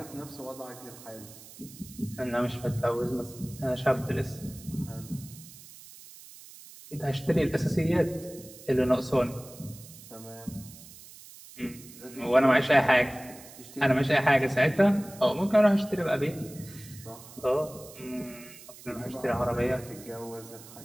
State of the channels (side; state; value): right; noise; hiss, 18 dB below the sound